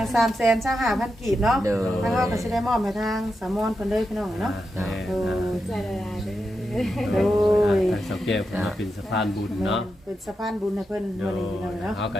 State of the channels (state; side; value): normal; both; correlation 0.87